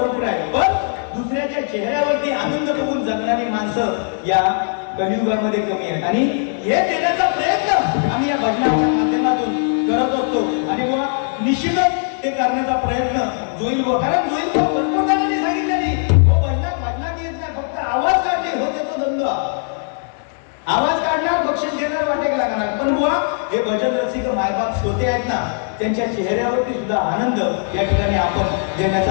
आहेत, पण दुसऱ्याच्या चेहऱ्यावरती आनंद बघून जगणारी माणसं या कलियुगामध्ये कमी आहेत. आणि हे देण्याचा प्रयत्न आम्ही या भजनाच्या माध्यमातून करत असतो. आणि मग निश्चितच ते करण्याचा प्रयत्न जोईल व कारण जोईल भरपूर जणांनी सांगितले नाही भजनात येत नाही, फक्त आवाज काढणे हो त्याचा धंदा. आवाज काढणार बक्षीस घेणार वाटेक लागणार. पण बुवा हे भजन रसिक मायबाप श्रोते आहेत ना त्यांच्या चेहऱ्यावरती सुद्धा आनंद या ठिकाणी आपण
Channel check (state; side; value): silent; right; 66 dB below the other